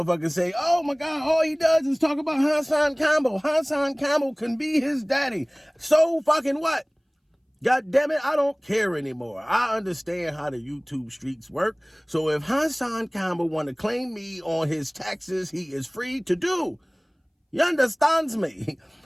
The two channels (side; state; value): both; identical; correlation 1.00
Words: say, oh my God, all he does is talk about HassanCampbell. HassanCampbell can be his daddy. So fucking what? God damn it, I don't care anymore. I understand how the YouTube streets work. So if HassanCampbell want to claim me on his taxes, he is free to do. You understands me?